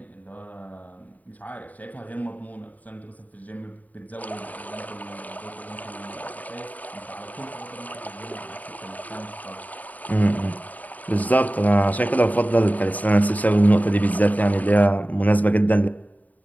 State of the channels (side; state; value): right; late; 0.076 ms